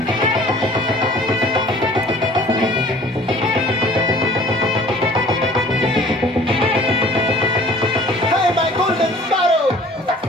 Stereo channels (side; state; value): both; normal; correlation 0.50